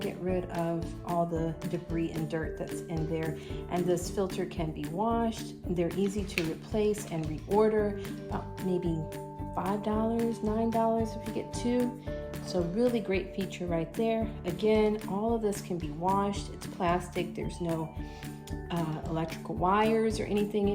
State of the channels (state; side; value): identical; both; correlation 1.00